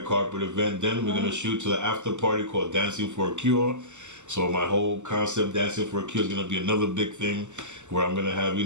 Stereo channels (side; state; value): left; late; 0.84 ms